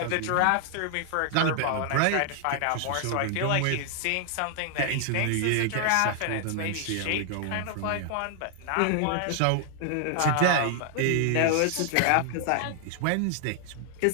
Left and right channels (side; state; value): both; different; correlation 0.00